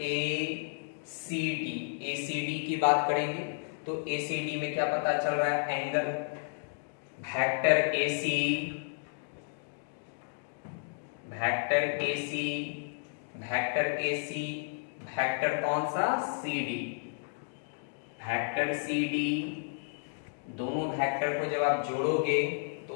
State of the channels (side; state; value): right; silent; digital silence